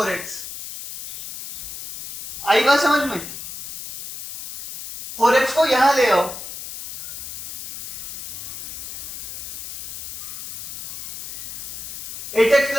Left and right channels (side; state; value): left; noise; hiss, 10 dB below the sound